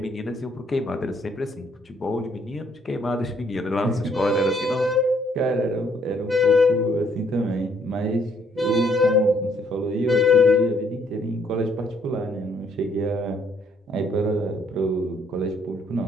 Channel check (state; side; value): normal; both; correlation 0.67